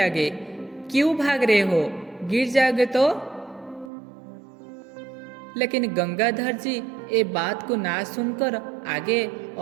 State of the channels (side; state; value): left; drops out; at 3.9 s